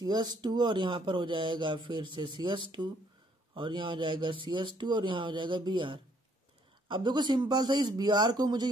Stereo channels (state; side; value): normal; both; correlation 0.66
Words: और यहाँ पर हो जाएगा फिर से CH2 और यहाँ हो जाएगा CH2 और यहाँ हो जाएगा Br। अब देखो सिंपल सा इस Br को मुझे